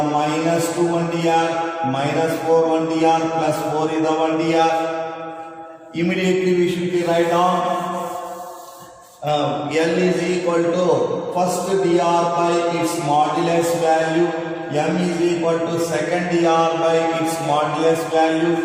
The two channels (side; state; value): both; identical; correlation 1.00